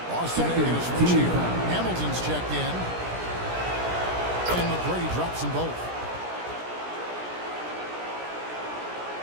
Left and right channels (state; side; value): late; left; 17 ms